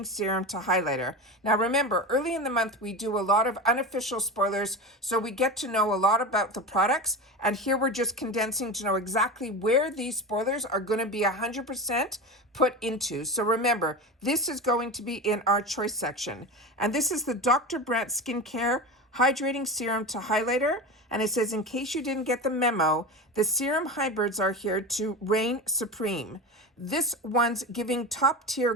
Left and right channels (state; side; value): normal; both; correlation 0.26